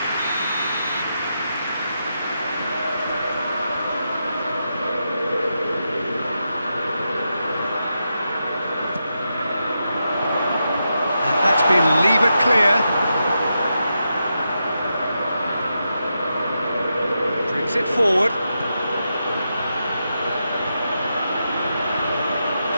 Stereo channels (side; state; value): both; inverted; correlation -0.86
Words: And that's been levered clear. It forward.